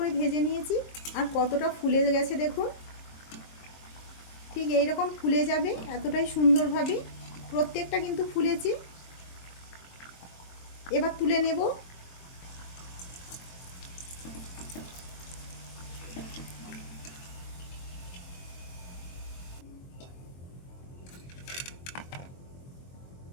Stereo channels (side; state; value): right; late; 23 ms